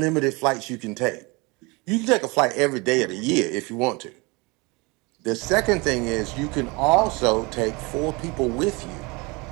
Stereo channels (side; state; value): left; quieter; 26.8 dB